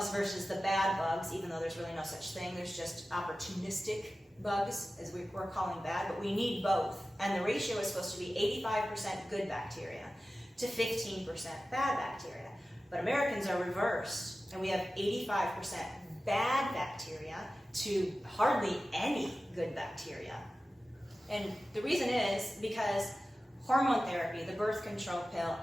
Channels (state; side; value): normal; both; correlation 0.95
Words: versus the bad bugs, even though there's really no such thing. There's just opportunistic bugs, as we're calling bad, but we need both. And the ratio is supposed to be 85% good bacteria to 15% bad bacteria. But Americans are reversed, and we have 85% bad bacteria to hardly any good bacteria. And the reason is because hormone therapy, the birth control pill,